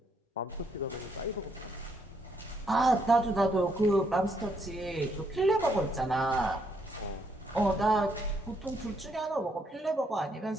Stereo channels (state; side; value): normal; both; correlation 0.73